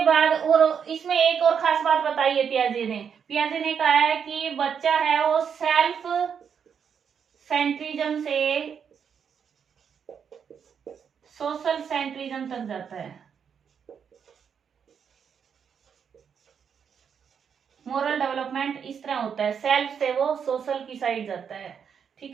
बाद और इसमें एक और खास बात बताई है पियाजे ने कहा है कि बच्चा है वो सेल्फ सेंट्रिज्म से सोशल सेंट्रिज्म तक जाता है। मोरल डेवलपमेंट इस तरह होता है, सेल्फ से वो सोशल की साइड जाता है।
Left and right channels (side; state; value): left; quieter; 7.2 dB